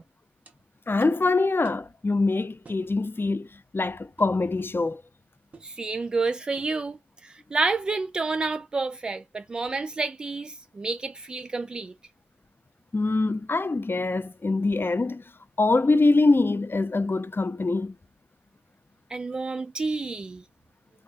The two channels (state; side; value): normal; both; correlation 0.89